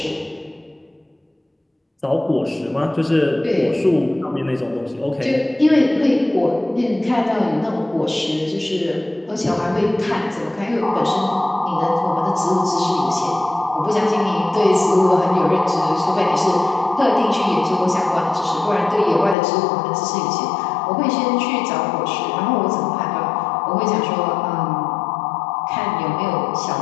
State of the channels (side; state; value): right; drops out; at 19.4 s